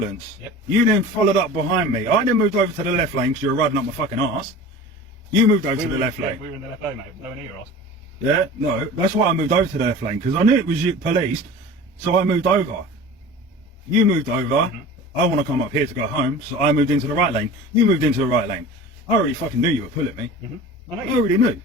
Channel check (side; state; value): both; normal; correlation 0.38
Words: Yep. You then followed up behind me. I then moved over to the left lane because you were riding up my fucking arse. You moved over to the left lane. We were in the left lane, mate. No one near us. Yeah, no, that's why I moved over to the left lane, because I knew it was you, police, so I moved over. You moved over, I want to come up here to go home, so I moved into the right lane. You moved into the right lane. I already fucking knew you were pulling me. I know I you. already knew.